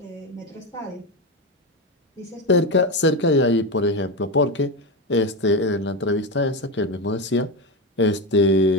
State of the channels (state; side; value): normal; both; correlation 0.15